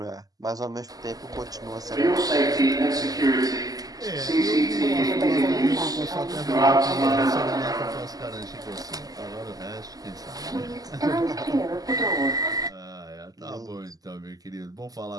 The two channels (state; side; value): late; left; 0.17 ms